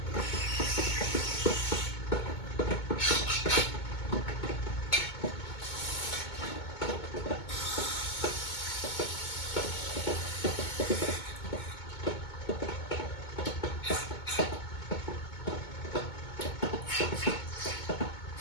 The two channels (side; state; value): right; late; 2.2 ms